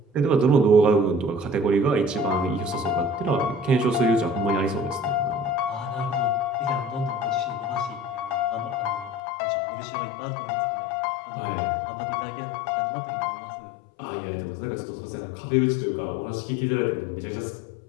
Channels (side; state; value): right; drops out; at 9.2 s